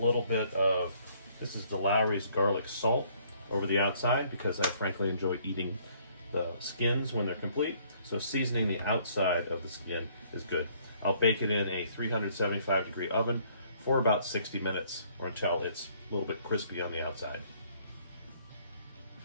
bit of, this is the Lowry's garlic salt, over the outside, because I frankly enjoy eating the skins when they're complete. So seasoning the outside of the skin is good. I'll bake it in a 375 degree oven for about 60 minutes, or until it's a little bit crispy on the outside.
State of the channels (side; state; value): both; inverted; correlation -0.63